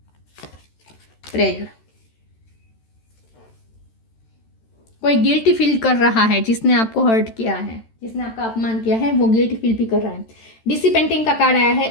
प्रेयर, कोई गिल्टी फील कर रहा है, जिसने आपको हर्ट किया है, जिसने आपका अपमान किया है, वो गिल्टी फील भी कर रहा है। डिसिपेंटिंग का कार्ड आया है,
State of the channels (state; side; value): late; right; 13 ms